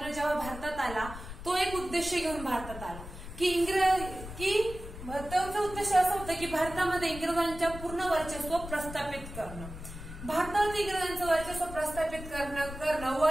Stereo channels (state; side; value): noise; left; rumble, 11 dB below the sound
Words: जेव्हा भारतात आला तो एक उद्देश घेऊन भारतात आला की त्याचा उद्देश असा होता की भारतामध्ये इंग्रजांच्या पूर्ण वर्चस्व प्रस्थापित करणं. भारतात इंग्रजांचं वर्चस्व प्रस्थापित करणं व